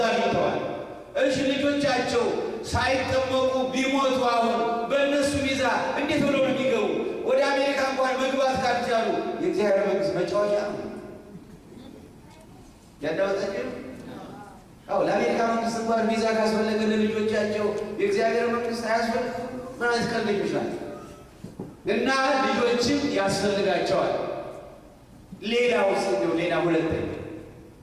አግኝተዋል። እሺ፣ ልጆቻቸው ሳይጠመቁ ቢሞቱ አሁን በእነሱ ቪዛ እንዴት ብለው ነው የሚገቡ? ወደ አሜሪካ እንኳን መግባት ካልቻሉ የእግዚአብሔር መንግስት መጫወቻ ነው። ያዳወጣችሁ? አዎ፣ ለአሜሪካ መንግስት እንኳን ቪዛ ካስፈለገ ለልጆቻቸው የእግዚአብሔር መንግስት አያስፈልግም። ምን አይነት ቀልደኞች ናቸው! እና ልጆችም ያስፈልጋቸዋል።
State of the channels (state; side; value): identical; both; correlation 1.00